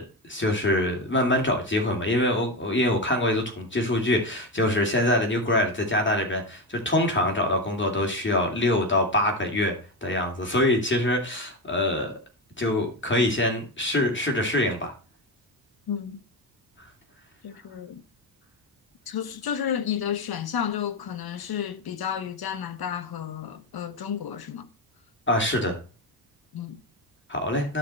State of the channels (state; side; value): normal; both; correlation 0.16